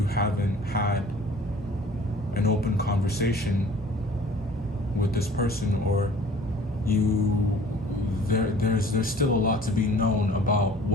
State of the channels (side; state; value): both; normal; correlation 0.49